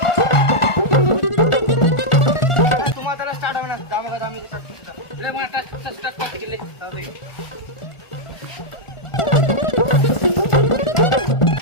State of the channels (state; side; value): late; right; 1.4 ms